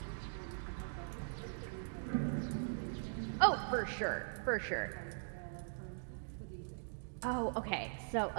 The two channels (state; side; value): silent; left; digital silence